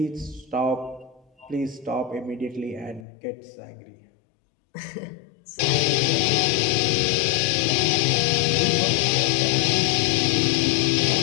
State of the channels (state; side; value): drops out; right; at 3.1 s